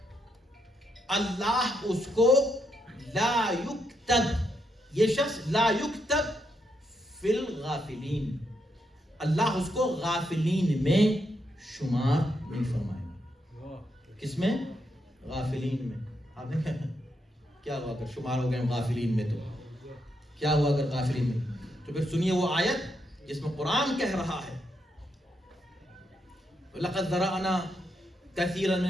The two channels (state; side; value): normal; both; correlation 0.80